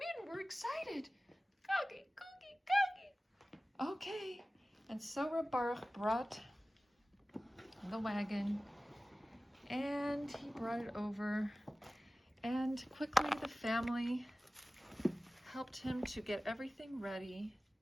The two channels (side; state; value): both; normal; correlation 0.96